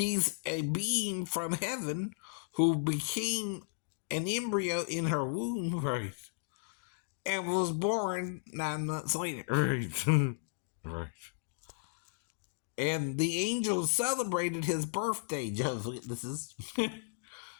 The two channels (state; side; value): silent; right; digital silence